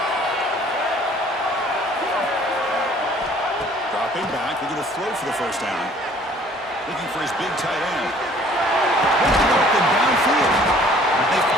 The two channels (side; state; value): both; normal; correlation 0.55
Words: Dropping back, looking to throw for the first down. Looking for his big tight end. Looking open downfield. They